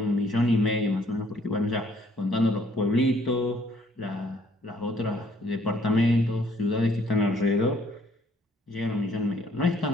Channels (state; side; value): normal; both; correlation 0.63